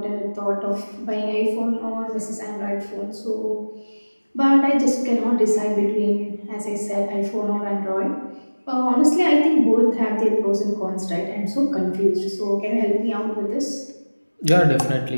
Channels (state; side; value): inverted; both; correlation -1.00